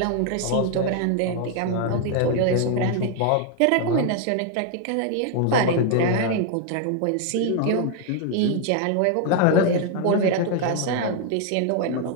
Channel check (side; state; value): both; different; correlation 0.00